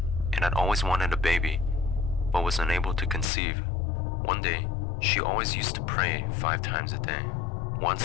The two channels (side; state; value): right; drops out; at 3.2 s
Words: and had always wanted a baby, but was unable to conceive. One day, she always used to pray 5 times a day. One